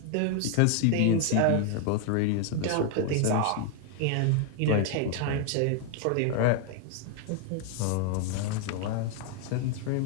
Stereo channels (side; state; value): both; different; correlation 0.00